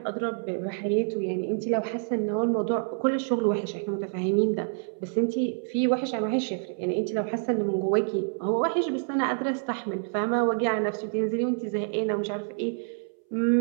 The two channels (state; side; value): silent; left; 60 dB below the other